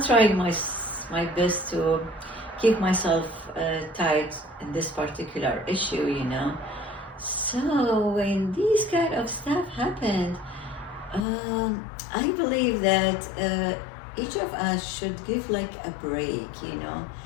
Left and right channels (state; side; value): drops out; right; at 11.2 s